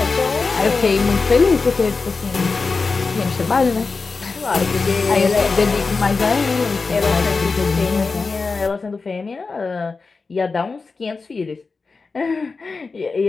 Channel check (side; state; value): right; quieter; 4.3 dB